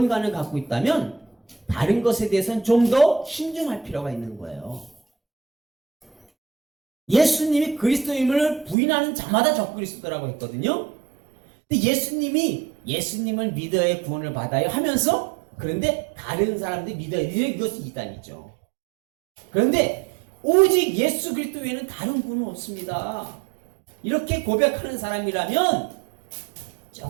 갖고 있다면 다른 것에 대해서는 좀 더 신중할 필요가 있는 거예요. 예수님이 그리스도임을 부인하는 자마다 적그리스도라고 했거든요. 근데 예수님을 믿어야 구원을 받아요 하면서 그런데 다른 사람들이 믿어야 이것이 이단이죠. 그런데 오직 예수 그리스도 외에는 다른 구원은 없습니다. 이렇게 고백하는 사람이라면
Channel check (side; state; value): left; drops out; at 8.8 s